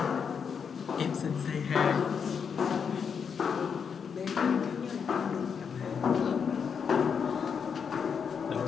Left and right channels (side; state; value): right; quieter; 6.6 dB